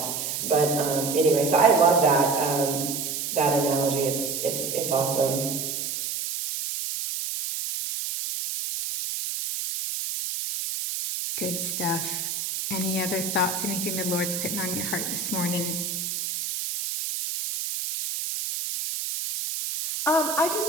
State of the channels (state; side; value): noise; right; hiss, 3 dB below the sound